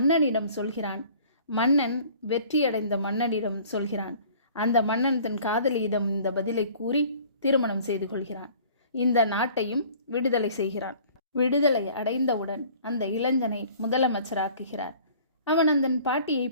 சொல்கிறான். மன்னன் வெற்றியடைந்த மன்னனிடம் சொல்கிறான். அந்த மன்னன் தன் காதலியிடம் இந்த பதிலை கூறி திருமணம் செய்து கொள்கிறான். இந்த நாட்டையும் விடுதலை செய்கிறான். விடுதலை அடைந்தவுடன் அந்த இளைஞனை முதலமைச்சராக்குகிறார். அவன் அந்த பாட்டியை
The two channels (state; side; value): inverted; both; correlation -0.50